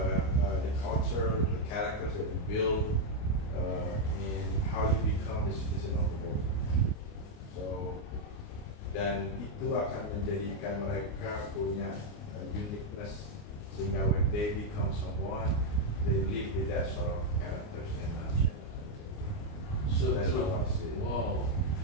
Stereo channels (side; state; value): right; late; 29 ms